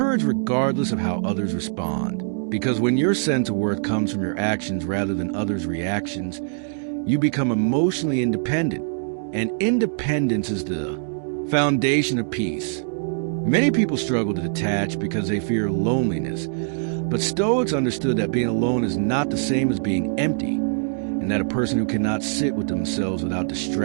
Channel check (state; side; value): silent; left; digital silence